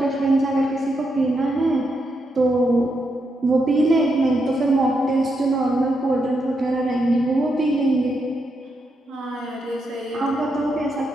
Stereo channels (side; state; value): both; normal; correlation 0.82